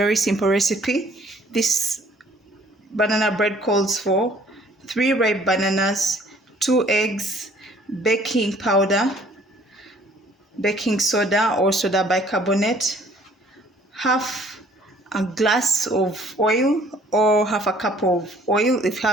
simple recipe. This banana bread calls for 3 ripe bananas, 2 eggs, baking powder, baking soda or soda bicarbonate, half a glass of oil or half a cup of oil. If you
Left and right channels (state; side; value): normal; both; correlation 0.58